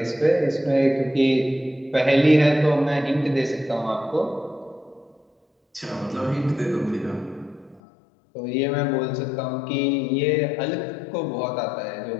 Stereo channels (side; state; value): right; drops out; at 7.8 s